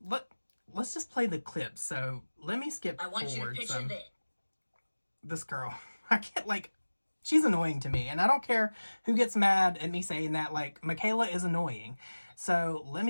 just play the clip. So let me skip forward. I want you to picture this girl. I can't, like, she's annoying to me, and I don't care who gets mad at me saying that. Like, Mikayla is annoying. So let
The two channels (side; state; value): both; inverted; correlation -1.00